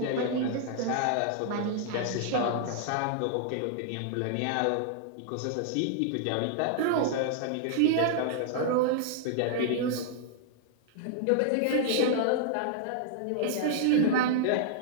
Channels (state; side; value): different; both; correlation -0.01